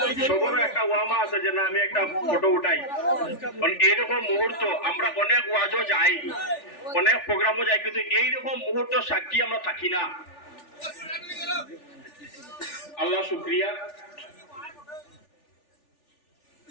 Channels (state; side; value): late; right; 3.4 ms